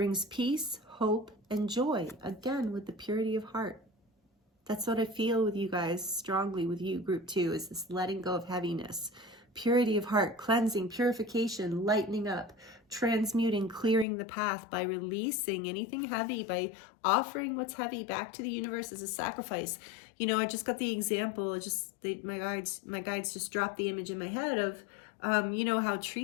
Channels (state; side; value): drops out; right; at 14.1 s